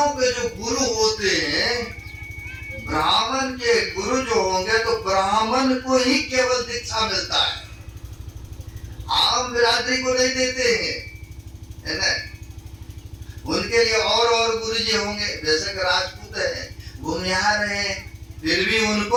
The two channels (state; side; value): identical; both; correlation 1.00